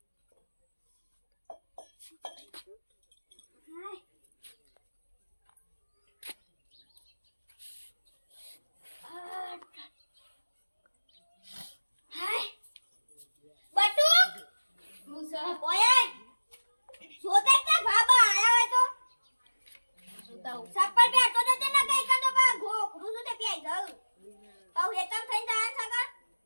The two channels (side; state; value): both; inverted; correlation -1.00